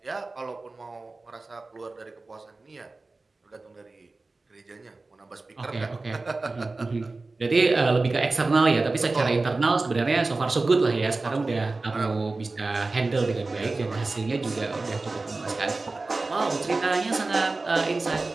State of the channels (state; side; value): quieter; left; 3.5 dB